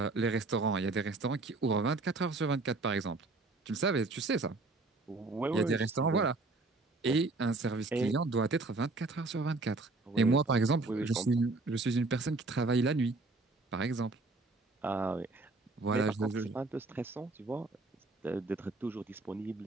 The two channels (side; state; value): left; quieter; 3.3 dB